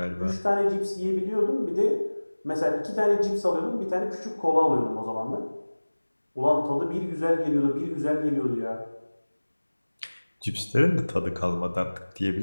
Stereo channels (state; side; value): inverted; both; correlation -1.00